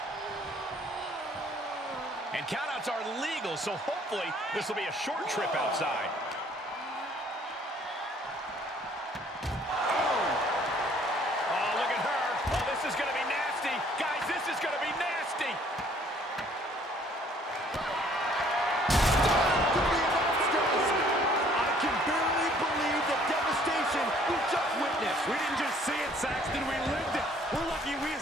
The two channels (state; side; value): normal; both; correlation 0.59